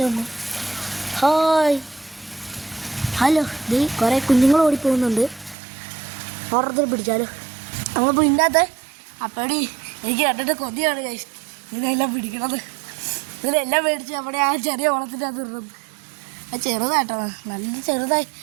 Hi, hello. കുറേ കുഞ്ഞുങ്ങൾ ഓടിപ്പോകുന്നുണ്ട്. ഓർഡർ പിടിച്ചാലോ. നമ്മളിപ്പോൾ ഇതിനകത്ത് അപ്പടി എനിക്ക് കണ്ടിട്ട് കൊതിയാണ് കഴിച്ചു. ഇതിനെല്ലാം പിടിക്കണത്. ഇതിലെല്ലാം മേടിച്ച് അവിടെ ആ ചെറിയ ഓളത്തിൻ്റെ അത് ഇടുന്നത്. അത് ചെറുതായിട്ടോ, നല്ല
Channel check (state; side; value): drops out; left; at 5.6 s